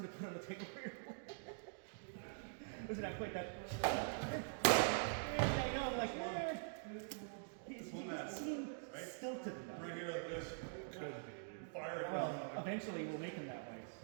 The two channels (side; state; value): left; silent; digital silence